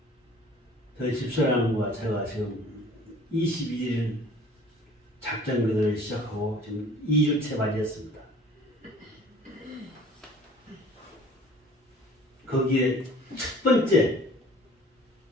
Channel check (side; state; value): both; normal; correlation 0.50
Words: 저희 집사람과 제가 지금 22일 작전교대를 시작하고 지금 2주째 맞이했습니다. 거기에